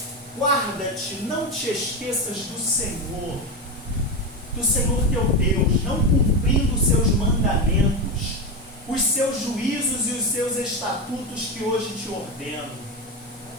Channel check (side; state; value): both; normal; correlation 0.15